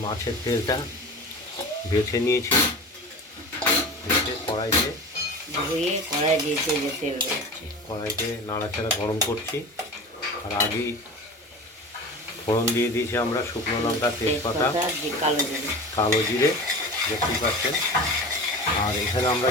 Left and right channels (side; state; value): both; normal; correlation 0.33